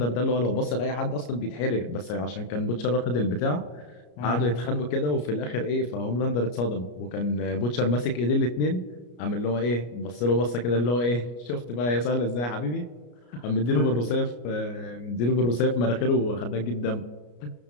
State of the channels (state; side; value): late; right; 33 ms